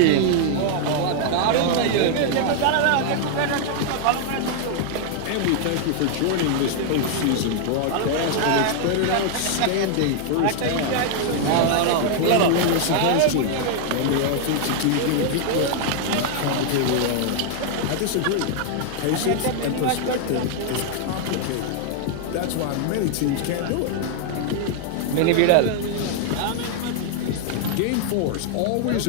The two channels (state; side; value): different; both; correlation 0.00